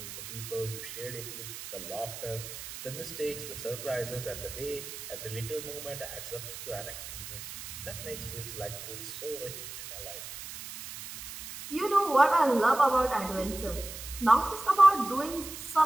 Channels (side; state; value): right; noise; hiss, 10 dB below the sound